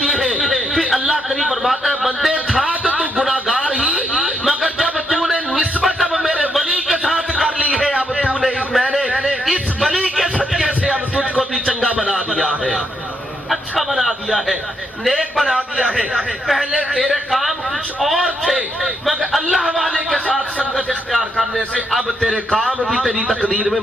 है। फिर अल्लाह करीम फरमाता है, बंदे था तो तू गुनाहगार ही, मगर जब तूने निस्बत अब मेरे वली के साथ कर ली है, अब तूने मैंने इस वली के सदके से अब तुझको भी चंगा बना दिया है, अच्छा बना दिया है, नेक बना दिया है। पहले तेरे काम कुछ और थे, मगर अल्लाह वाले के साथ संगत इख्तियार करने से अब तेरे काम भी तेरी तकदीर में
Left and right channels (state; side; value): normal; both; correlation 0.77